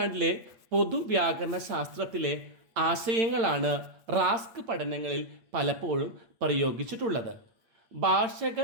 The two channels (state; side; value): late; left; 8.6 ms